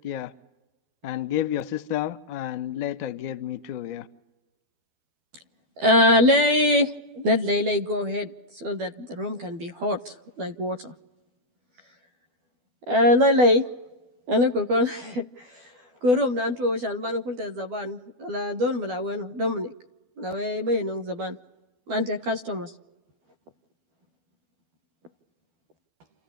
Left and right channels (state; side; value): late; left; 12 ms